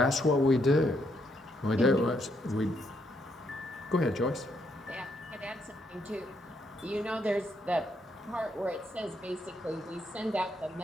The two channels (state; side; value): normal; both; correlation 0.75